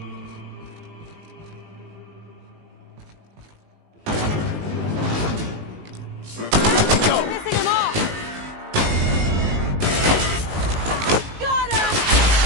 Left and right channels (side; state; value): left; late; 19 ms